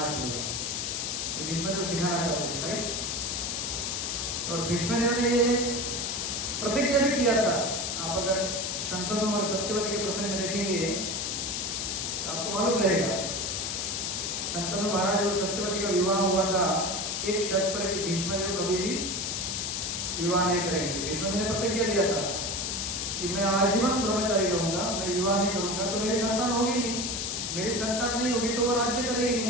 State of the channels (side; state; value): left; noise; hiss, 2 dB below the sound